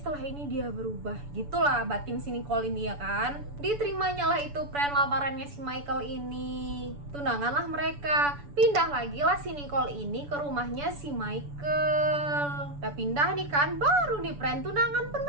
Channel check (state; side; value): late; left; 6.9 ms